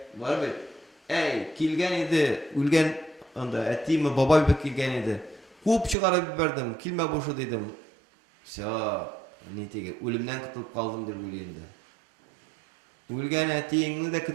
var mı? Ey kilgen idi, ülgen onda ettiğimi baba bir kilgen idi. Kup çıkarıp biberdim, kilme boşu dedim. Ne tige ölümden kutulup kaldım der ölüyende. Ülgen ettiğini de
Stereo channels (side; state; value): left; drops out; at 6.0 s